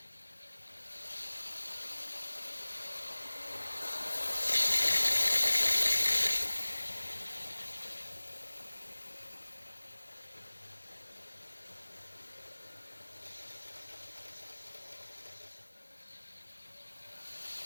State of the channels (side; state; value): both; inverted; correlation -1.00